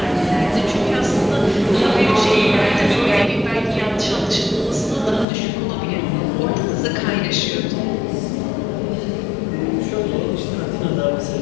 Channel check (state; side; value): drops out; right; at 5.2 s